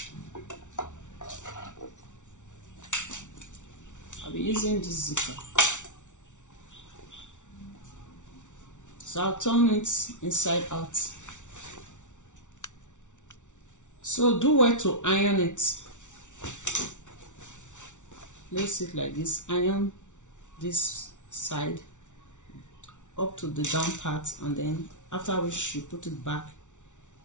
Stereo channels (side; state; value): right; late; 0.86 ms